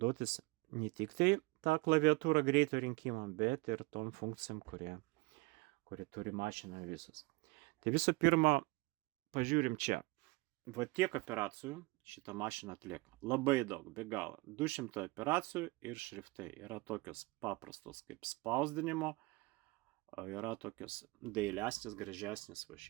ne tik tai tą klaviatūrą greito rinkimą, bet ir tom funkcijom, kurie turi mašina visus. Tai visų pirma, pažiūrim čia. Tiek operacijų šitą mašiną atlieka. Labai daug, be galo. 200 operacijų ir šriftai. Yra tokios paprastos kaip spausdinimo, yra tokios dailesnės, gražesnės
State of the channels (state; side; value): quieter; left; 24.3 dB